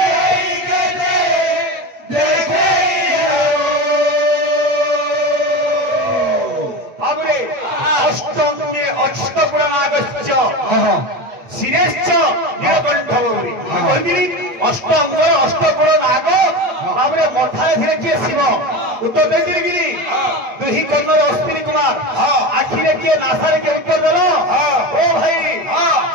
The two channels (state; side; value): late; left; 9.0 ms